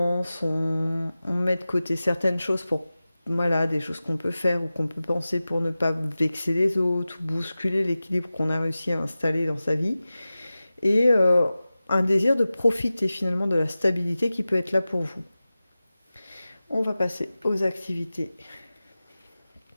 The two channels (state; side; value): inverted; both; correlation -0.96